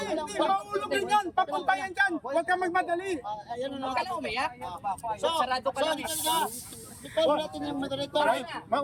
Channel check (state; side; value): identical; both; correlation 1.00